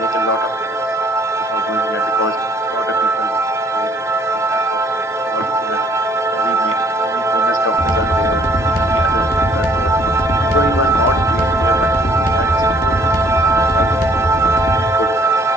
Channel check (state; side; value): normal; both; correlation 0.61